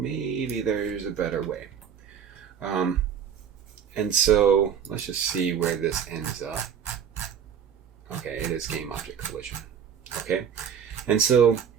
there's a better way. And so let's just see where this ends up. Okay, it is game object collision. Okay, and so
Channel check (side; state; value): left; quieter; 8.0 dB